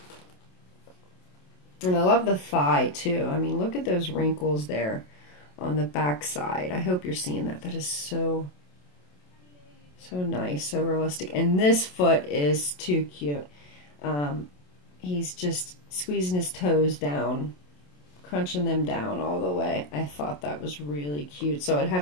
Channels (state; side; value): late; right; 27 ms